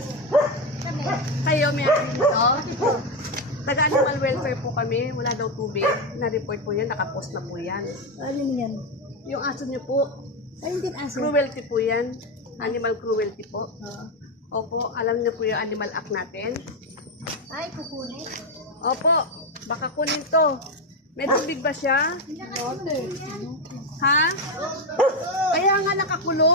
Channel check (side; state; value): both; normal; correlation 0.09